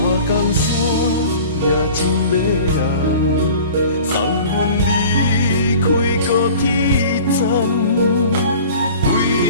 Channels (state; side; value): inverted; both; correlation -0.43